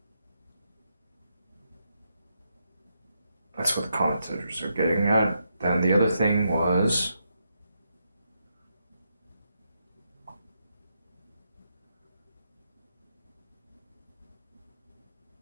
That's what the commentators are getting at. Then the other thing was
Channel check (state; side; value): inverted; both; correlation -0.81